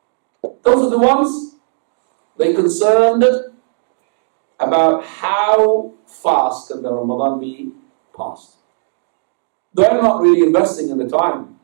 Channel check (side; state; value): left; silent; 66 dB below the other